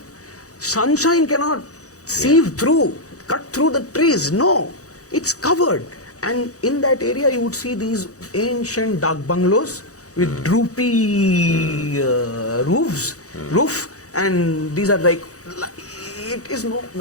sunshine cannot sieve through, cut through the trees. No. It's covered, and in that area you would see these ancient dak bungalows with droopy roof, and these are like it is no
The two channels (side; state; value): right; late; 0.66 ms